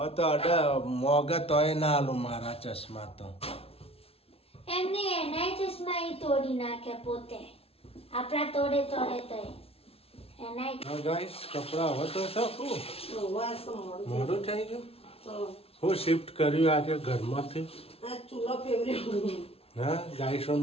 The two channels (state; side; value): late; right; 0.28 ms